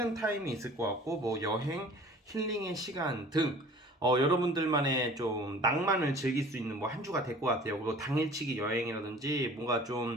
타임이 있을 것 같고 뭐 여행, 힐링의 시간 등 여러분들만의 좀 낭만을 즐길 수 있는 뭐 한 주가 될 것 같아요. 그리고 당일치기 여행이라든지 뭔가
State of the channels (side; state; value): both; normal; correlation 0.46